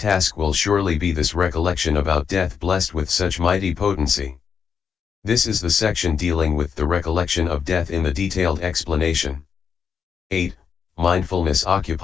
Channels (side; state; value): right; quieter; 6.7 dB